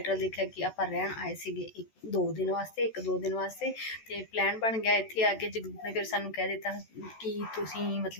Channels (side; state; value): right; late; 14 ms